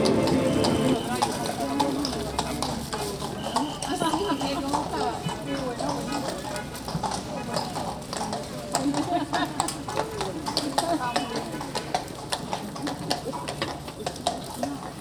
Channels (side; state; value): both; identical; correlation 1.00